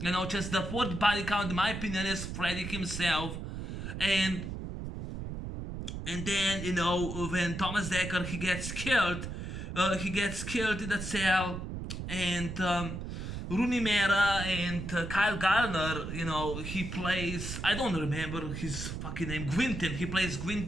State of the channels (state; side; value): noise; right; rumble, 6 dB below the sound